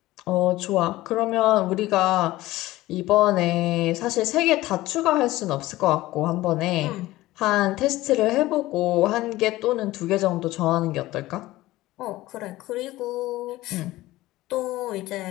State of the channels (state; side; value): quieter; right; 17.4 dB